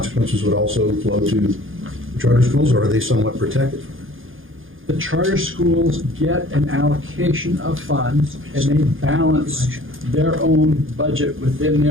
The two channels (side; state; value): left; late; 0.59 ms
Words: would also flow to the charter schools, or are they somewhat protected from that? The charter schools get an allocation of funds, and they balance their own budget within